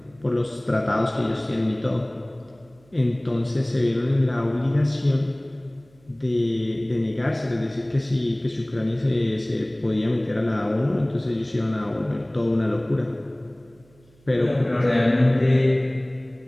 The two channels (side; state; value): right; noise; hum, 30 dB below the sound